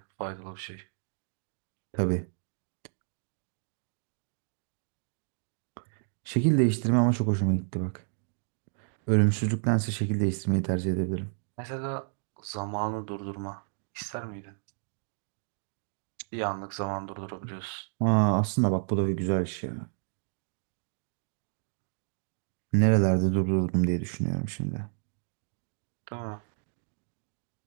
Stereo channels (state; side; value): silent; left; 57 dB below the other